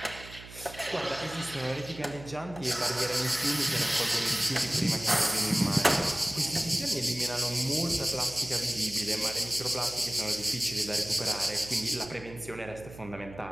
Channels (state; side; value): noise; right; hum, 16 dB below the sound